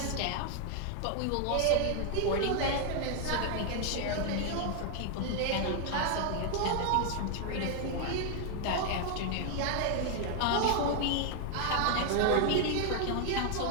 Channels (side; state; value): both; different; correlation 0.00